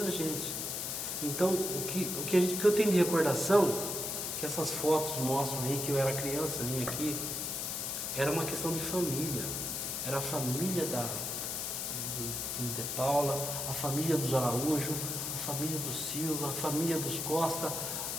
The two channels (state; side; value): noise; left; hiss, 3 dB below the sound